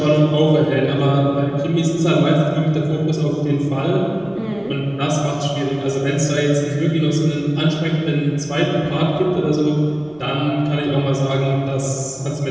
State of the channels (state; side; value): noise; right; rumble, 27 dB below the sound